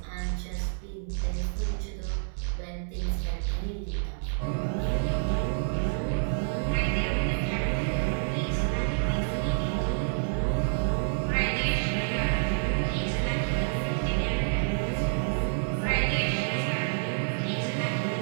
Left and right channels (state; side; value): silent; left; 59 dB below the other